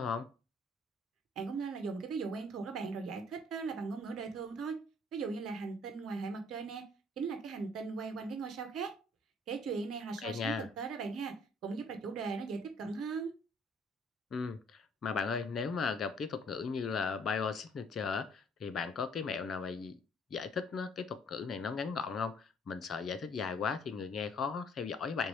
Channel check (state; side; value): normal; both; correlation 0.60